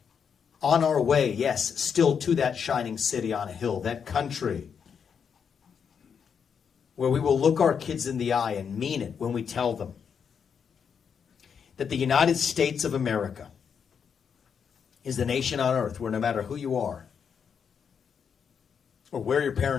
On our way, yes, still to that shining city on a hill, that country where we will look our kids in the eye and mean it when we tell them that the United States of America is the nation on earth where no matter who you are or where your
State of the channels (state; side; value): quieter; right; 7.0 dB